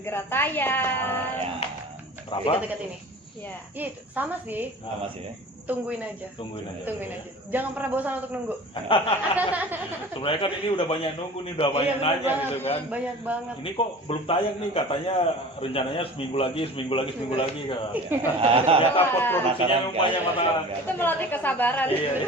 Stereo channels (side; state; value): both; normal; correlation 0.40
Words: tayang. Ya, Berapa? Dekat-dekat ini. Ya. Iya itu sama sih. sama sih ya. Tungguin aja. Tungguin aja. Tungguin aja. Jangan pernah bosan untuk nunggu. Sebenarnya kan ini udah banyak nunggu nih, udah banyak Iya, nanya banget, gitu kan. Banyak banget. Ini kok belum tayang nih, katanya rencananya seminggu lagi kan. Ternyata pot produksinya Penasaran, banyak kan? mata. Itu melatih kesabaran. Iya.